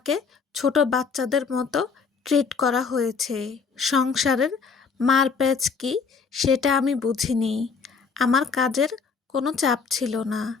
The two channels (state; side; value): quieter; right; 5.4 dB